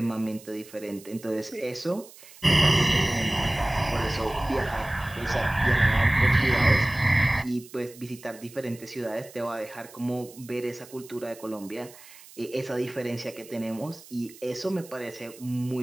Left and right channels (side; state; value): right; noise; hiss, 20 dB below the sound